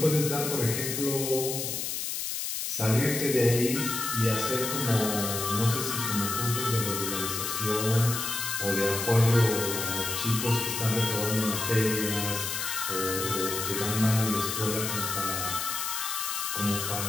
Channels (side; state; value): left; noise; hiss, 3 dB below the sound